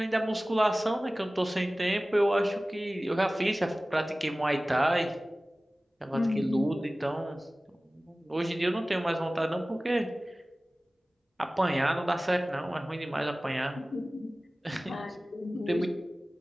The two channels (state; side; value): normal; both; correlation 0.97